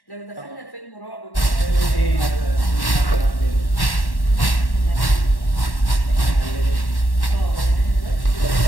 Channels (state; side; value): late; right; 1.1 ms